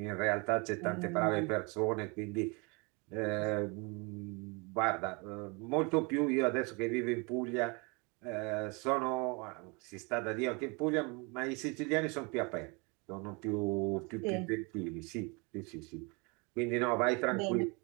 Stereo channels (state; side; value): quieter; left; 30.2 dB